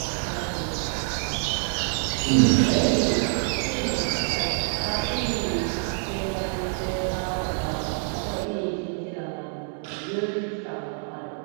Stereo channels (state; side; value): silent; left; 61 dB below the other